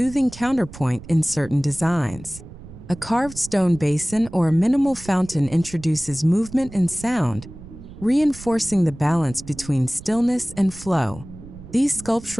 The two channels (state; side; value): noise; right; rumble, 16 dB below the sound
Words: counterpoint in certain designs. A carved stone basin or a minimal fountain introduces movement and sound, reinforcing the balance between stillness and flow. These